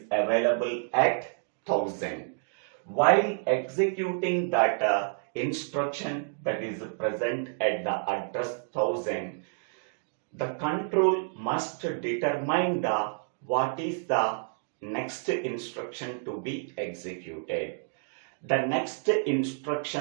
available at 1000. While executing that instruction that is present at the address 1000, the control must determine what is the next instruction to be executed. The next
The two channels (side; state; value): left; silent; digital silence